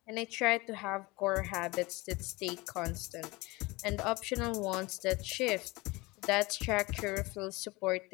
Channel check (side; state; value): right; quieter; 23.0 dB